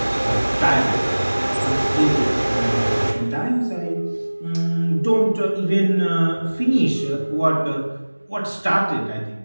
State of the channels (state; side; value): inverted; both; correlation -1.00